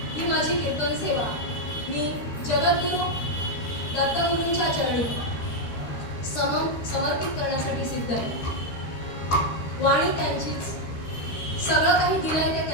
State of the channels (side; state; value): right; late; 13 ms